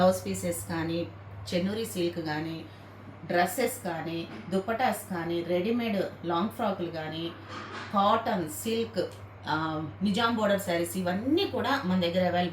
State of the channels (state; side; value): identical; both; correlation 1.00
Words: పీసెస్ కానీ, చెన్నూరి సిల్క్ కానీ, డ్రెస్సెస్ కానీ, దుపటాస్ కానీ, రెడీమేడ్ లాంగ్ ఫ్రాకులు కానీ, cotton, silk, Nizam border saris ఇవన్నీ కూడా మన దగ్గర